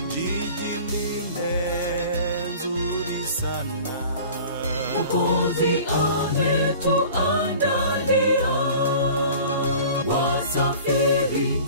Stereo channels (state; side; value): inverted; both; correlation -0.43